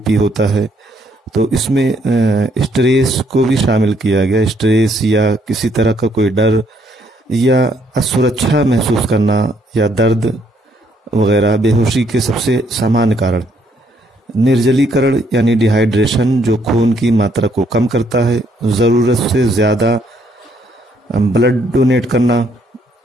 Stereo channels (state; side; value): normal; both; correlation 0.70